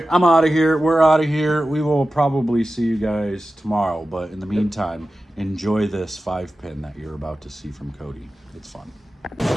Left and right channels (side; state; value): both; normal; correlation 0.94